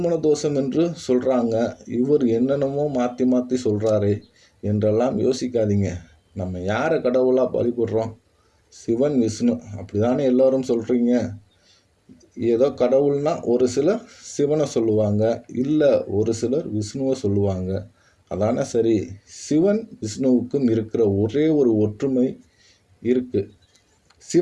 தோஷம் என்று சொல்கிறாங்க, இவர் என்னென்னமோ மாற்றி மாற்றி சொல்கிறாரே என்றெல்லாம் யோசிக்காதீங்க. நம்ம யாரை கடவுளாக வழிபடுறோம்? சிவன், விஷ்ணு, அப்படி தானே எல்லோரும் சொல்கிறீங்க. ஏதோ கடவுள்னா ஒரு சிலர் சிவனை சொல்லுவாங்க, இல்லை ஒரு சிலர் விஷ்ணுவை சொல்லுவாங்க. அதானே சரி. சிவன் விஷ்ணுவுக்கும் இருக்கிற ஒரே ஒரு ஒற்றுமை இருக்குது.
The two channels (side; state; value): both; identical; correlation 1.00